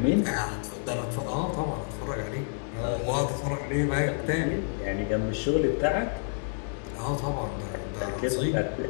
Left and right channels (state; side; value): silent; right; 59 dB below the other